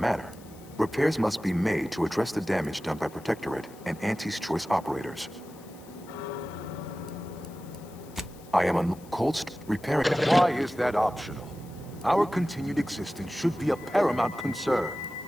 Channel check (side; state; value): left; noise; hiss, 23 dB below the sound